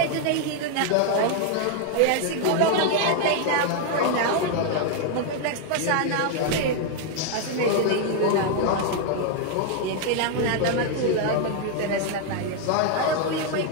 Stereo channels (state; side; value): different; both; correlation 0.00